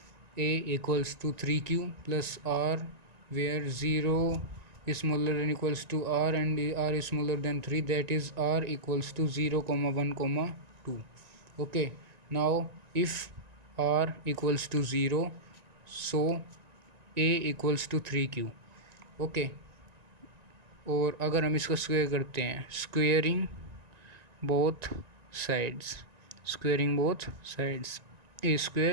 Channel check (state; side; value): late; left; 1.9 ms